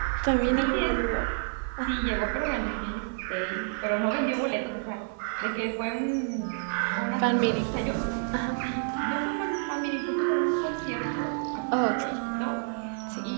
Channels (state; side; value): silent; left; 59 dB below the other